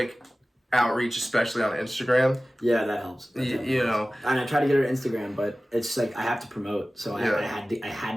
outreach, especially on Instagram. Yeah, that helps. You know, and I tried to get her Instagram, but it's like I have to promote, so Yeah. I had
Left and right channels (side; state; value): both; normal; correlation 0.97